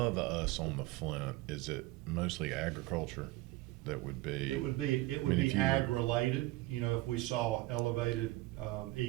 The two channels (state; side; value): quieter; left; 19.0 dB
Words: us on the Flint, is it mostly agriculture? That would be. It would be ag related. If we saw elevated